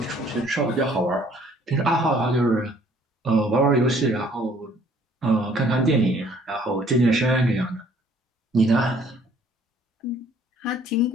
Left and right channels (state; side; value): normal; both; correlation 0.59